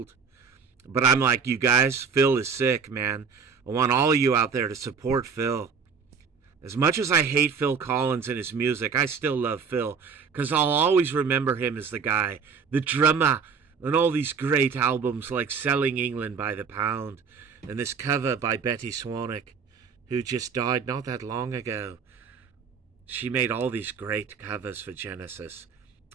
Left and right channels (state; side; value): quieter; left; 5.8 dB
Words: But I'm like, you guys, Phil is sick, man. I want all of you out there to support Phil. As much as I hate Phil Collins and his music, I still love Phil, because I'll always remember him as the guy, the drummer, and all these great albums like Selling England by the Pound, and this cover by Betty Swanick, who just died not that long ago. She made all these great covers for Genesis.